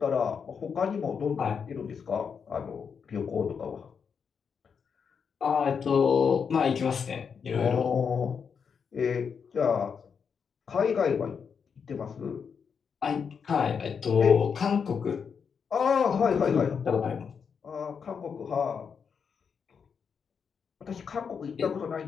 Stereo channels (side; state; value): right; quieter; 6.4 dB